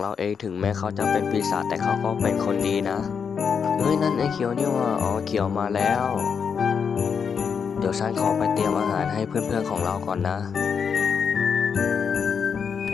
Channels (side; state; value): right; quieter; 6.5 dB